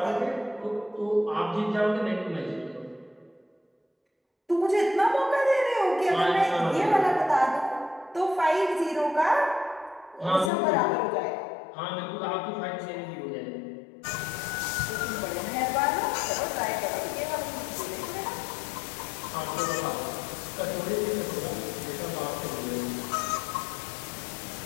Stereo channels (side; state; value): right; drops out; at 10.5 s